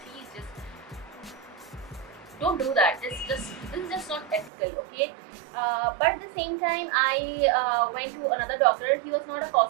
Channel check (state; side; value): drops out; left; at 4.5 s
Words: just don't do that. This is just not ethical, okay? But at the same time, I went to another doctor. He was not a